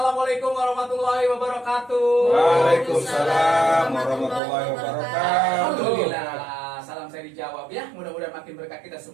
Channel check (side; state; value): left; drops out; at 4.4 s